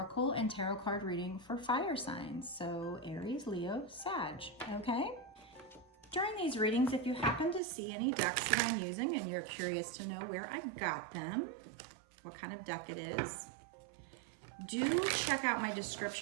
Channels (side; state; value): left; drops out; at 7.6 s